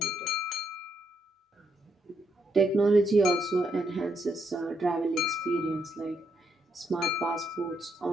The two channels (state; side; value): normal; both; correlation 0.78